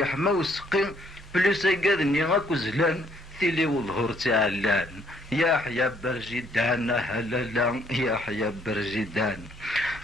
وسقي بليسا قادني غاكو زلان ثيلي والظهور تعلان. يحيى برزيدان هلالا يحيى برزيدان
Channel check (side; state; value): both; normal; correlation 0.67